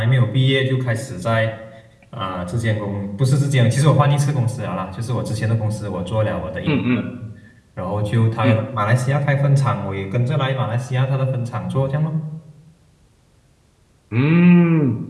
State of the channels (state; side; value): identical; both; correlation 1.00